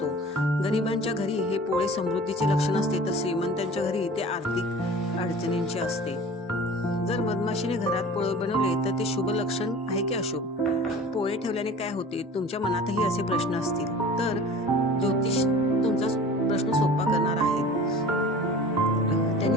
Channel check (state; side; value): normal; both; correlation 0.41